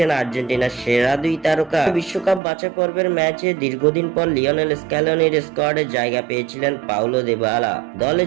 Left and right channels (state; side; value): drops out; left; at 2.4 s